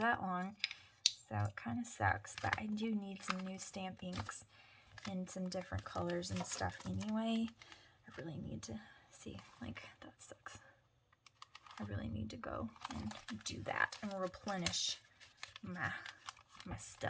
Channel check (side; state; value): both; identical; correlation 1.00